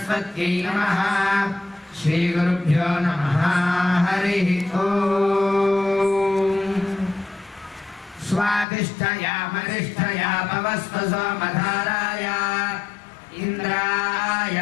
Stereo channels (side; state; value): right; drops out; at 8.7 s